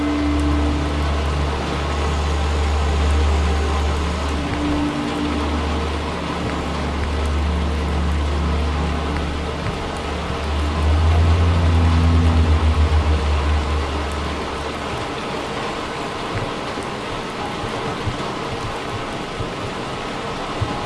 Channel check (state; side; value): identical; both; correlation 1.00